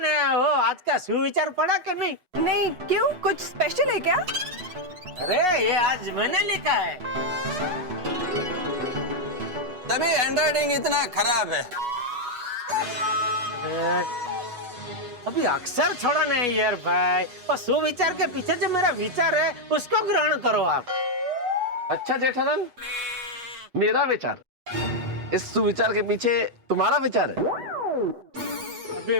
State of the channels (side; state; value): left; late; 8.2 ms